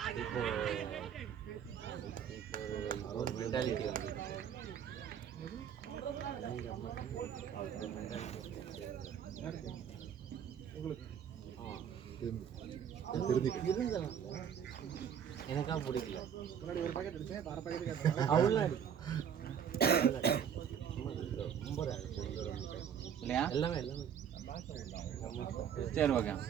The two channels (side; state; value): left; quieter; 8.5 dB